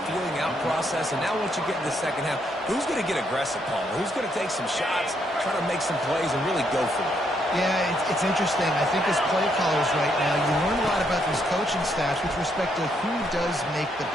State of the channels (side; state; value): both; normal; correlation 0.74